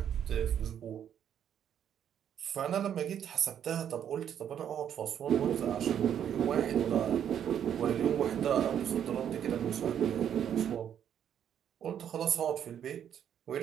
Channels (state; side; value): quieter; left; 9.3 dB